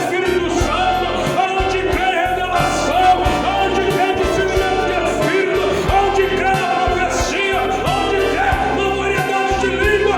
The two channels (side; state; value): both; identical; correlation 1.00